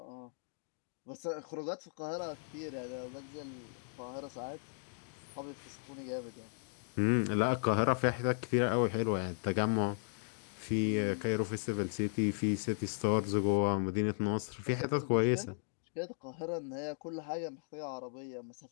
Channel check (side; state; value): right; silent; digital silence